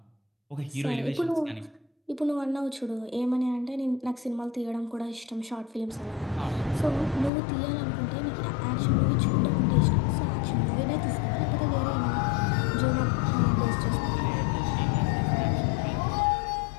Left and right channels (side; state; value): right; drops out; at 7.3 s